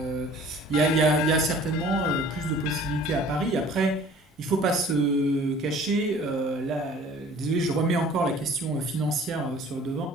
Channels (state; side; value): normal; both; correlation 0.49